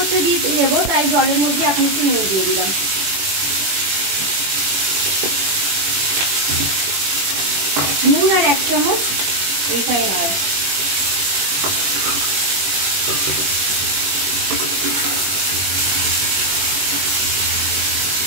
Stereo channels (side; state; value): left; late; 21 ms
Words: দিয়ে দেবো, তাই জলের মধ্যে এখন একটু নুন দিয়ে দিলাম। নুন আর 1 চামচ রিফাইন অয়েল।